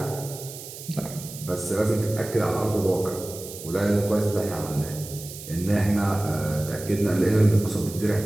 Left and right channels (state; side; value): noise; right; hiss, 13 dB below the sound